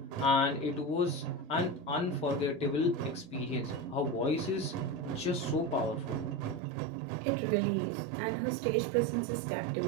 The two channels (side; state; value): left; drops out; at 6.6 s